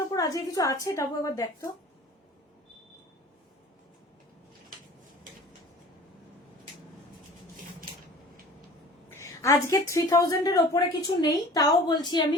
ওপর আজকে কিছু আছে, তারপর একবার দেখতো। আজকে 3000-এর ওপরে কিছু নেই, তাও বলছি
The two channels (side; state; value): both; normal; correlation 0.44